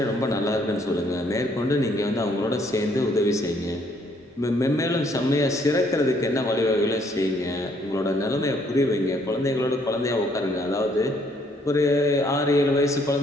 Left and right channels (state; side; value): normal; both; correlation 0.66